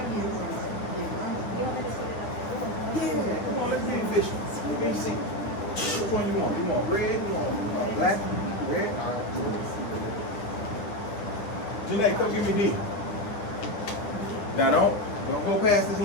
get it. Yeah, come on, let's be efficient. Let me see. Which one you want? You want red? You want black? Red? All right, good. Janae, come give me D. Now don't go past this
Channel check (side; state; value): right; late; 9.6 ms